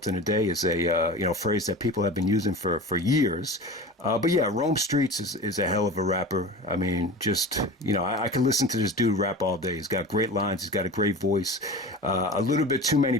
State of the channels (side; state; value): both; normal; correlation 0.33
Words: in a day is a phrase that people have been using for years. But yeah, Rome Streets is a hell of a rapper. I mean, just, I can listen to this dude rap all day. He's got great lines. He's got a great voice. A little bit too